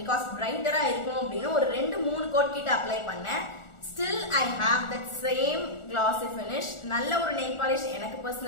பிகாஸ் பிரைட்டரா இருக்கும் அப்படின்னு ஒரு 2-3 கோட் கிட்ட அப்ளை பண்ணேன். Still I have that same glossy finish. நல்ல ஒரு நெயில் பாலிஷ் எனக்கு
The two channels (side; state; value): right; late; 1.4 ms